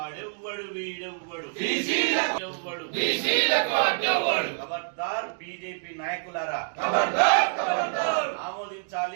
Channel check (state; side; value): silent; left; digital silence